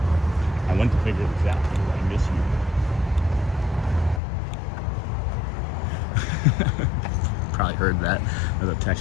I went to figure this out, I miss you. Probably heard that as a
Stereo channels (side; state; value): right; drops out; at 4.2 s